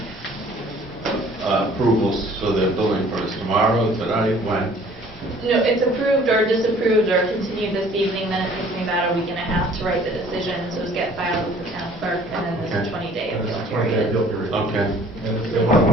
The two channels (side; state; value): both; normal; correlation 0.53